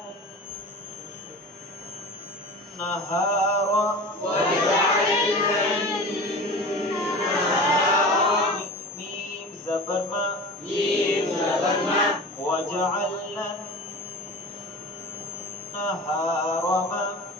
النهار وجعلنا النهار ميم زبر ما ميم زبر ما وجعلنا النهار ما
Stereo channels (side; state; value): both; normal; correlation 0.35